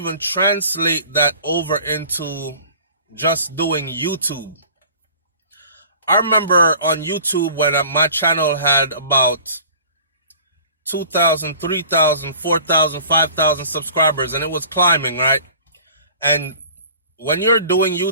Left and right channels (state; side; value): inverted; both; correlation -0.46